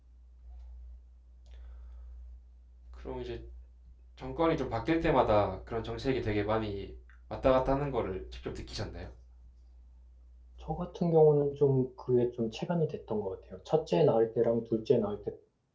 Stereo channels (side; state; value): both; identical; correlation 1.00